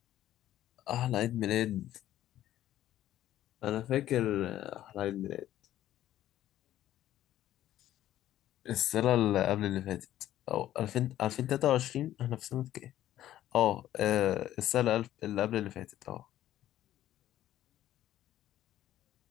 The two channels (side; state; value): right; quieter; 13.0 dB